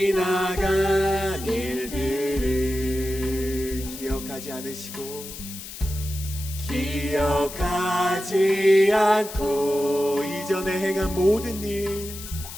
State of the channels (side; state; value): left; noise; hiss, 12 dB below the sound